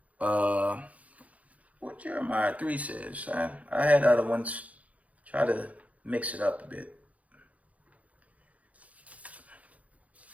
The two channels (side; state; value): left; late; 0.068 ms